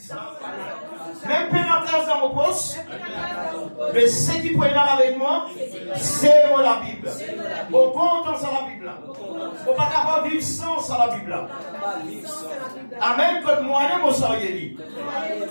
Même pas la classe dans mon poste, mais ce qui peut être avec moi, c'est moi la Bible. Au compte dans la Bible. On ne peut pas vivre sans la Bible. Amen. Quand moi-même, on s'en dit.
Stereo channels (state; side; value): inverted; both; correlation -1.00